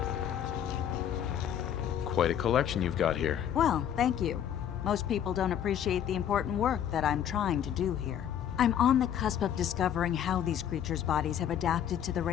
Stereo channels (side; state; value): right; quieter; 9.7 dB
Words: Quite a collection you've got here. Well, thank you. Most people don't appreciate the important work that I'm trying to do here. I'm on the cusp of discovering how these creatures' bodies have adapted to the